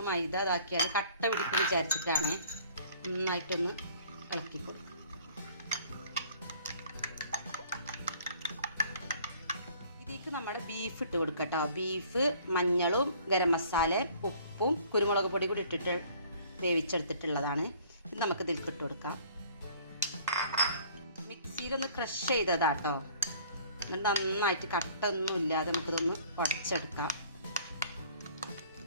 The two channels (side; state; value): both; inverted; correlation -0.54